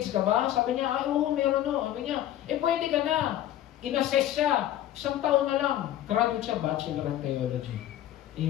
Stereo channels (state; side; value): quieter; right; 12.6 dB